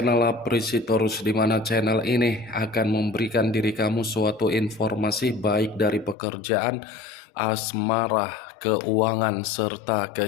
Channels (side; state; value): right; drops out; at 6.2 s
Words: Apresitorus, di mana channel ini akan memberikan diri kamu suatu informasi baik dari pekerjaan, asmara, keuangan, serta